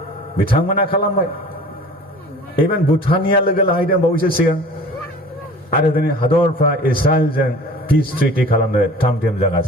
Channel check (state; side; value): normal; both; correlation 0.43